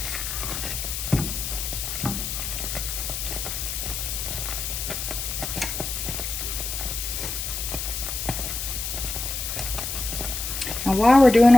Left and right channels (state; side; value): noise; left; hiss, 4 dB below the sound